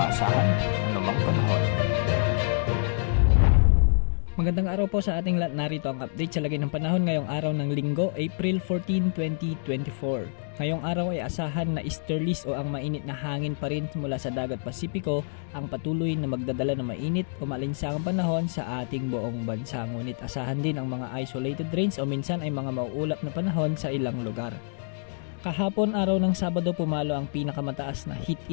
anumang panahon. Magandang araw po sa ating lahat. Narito ang update sa lagay ng panahon ngayong araw ng Linggo, April 14, 2024. Ngayong araw ay asahan na easterlies o ang mainit na hangin pa rin mula sa dagat Pasipiko ang patuloy na magdadala ng mainit o malinsangang panahon sa ating buong bansa. Ngunit asahan din ang mga isolated rains o minsan ay mga mauulap na panahon sa ilang lugar. Kahapon araw ng Sabado pumalo ang pinakamataas na heat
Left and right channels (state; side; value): silent; right; digital silence